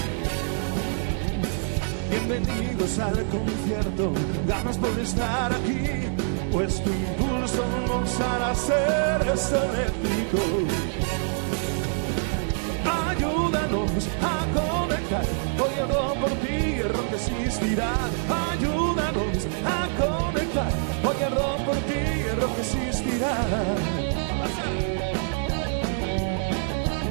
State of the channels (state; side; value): silent; left; 60 dB below the other